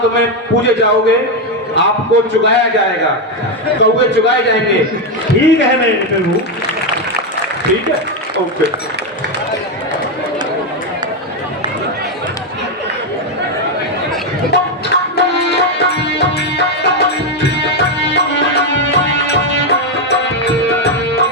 में पूजे जाओगे, आपको चुगाया जाएगा, कौवे चुगाए जाएंगे। ठीक है मेरे प्रभु। ठीक है, ओके।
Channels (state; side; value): normal; both; correlation 0.06